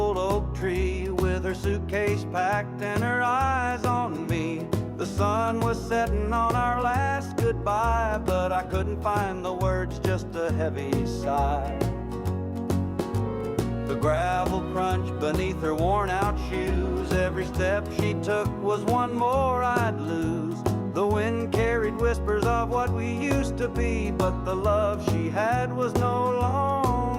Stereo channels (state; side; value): identical; both; correlation 1.00